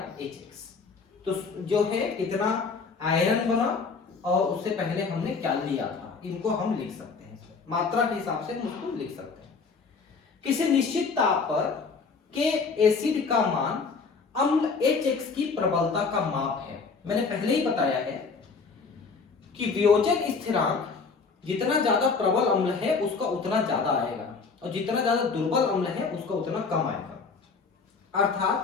Hx, तो जो है कितना आयरन बना और उससे पहले हमने क्या लिया था, इनको हम लिख सकते हैं, मात्रा के हिसाब से उसको लिख सकते हैं। किसी निश्चित ताप पर के एसिड का मान अम्ल Hx की प्रबलता का माप है। मैंने पहले ही बताया है कि वियोजन स्थिरांक जितना ज्यादा प्रबल अम्ल है उसका उतना ज्यादा आएगा और जितना ज्यादा दुर्बल अम्ल है उसका उतना कम आएगा।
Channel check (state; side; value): quieter; right; 4.8 dB